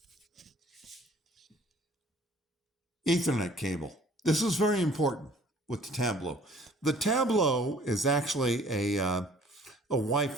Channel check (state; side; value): normal; both; correlation 0.54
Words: Ethernet cable. This is very important with the Tablo. The Tablo is actually a